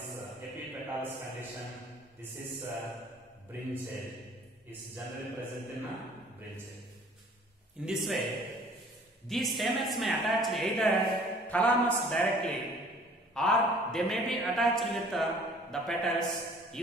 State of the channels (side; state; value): both; normal; correlation 0.53